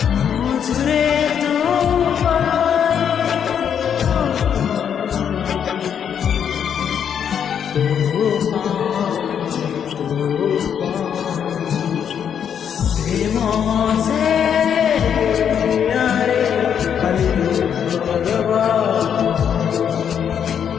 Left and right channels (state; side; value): quieter; right; 8.2 dB